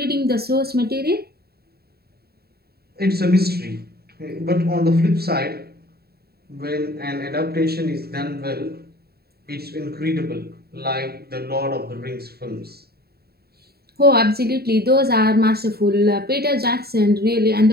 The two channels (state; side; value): late; left; 0.46 ms